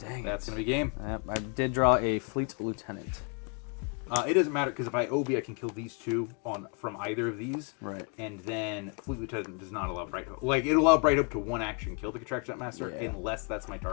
that's it. going to be game. Yep, I did draw a Fleet Lieutenant. It doesn't matter because if I OB, I can kill these two from either of these. Right. And then Fleet Lieutenant does not allow Bright Hope. Like, it allow Bright Hope to one action kill the Contraction Master unless that's my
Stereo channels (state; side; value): quieter; right; 36.2 dB